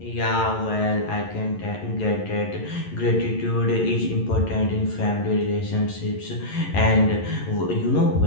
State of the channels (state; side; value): late; right; 11 ms